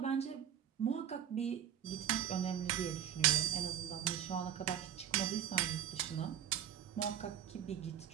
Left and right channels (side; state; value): left; quieter; 10.0 dB